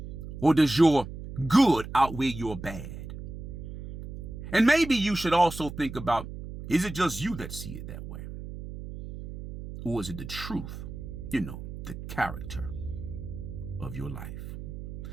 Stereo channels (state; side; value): noise; right; hum, 10 dB below the sound